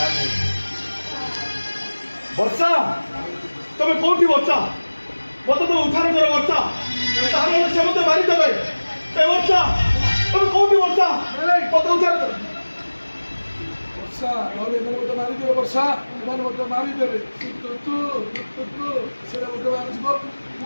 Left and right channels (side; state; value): both; inverted; correlation -1.00